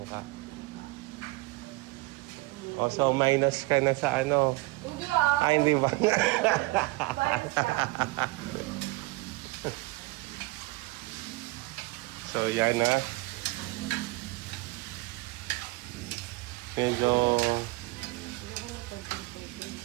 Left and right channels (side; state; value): left; quieter; 22.3 dB